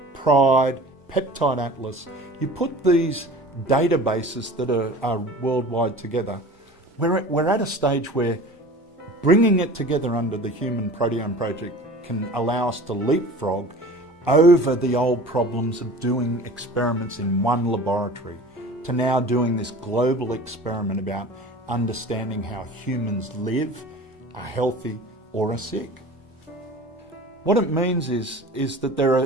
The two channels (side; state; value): both; normal; correlation 0.40